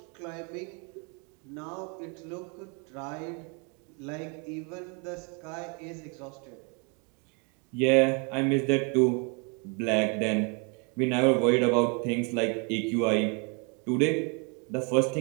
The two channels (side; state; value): left; quieter; 34.8 dB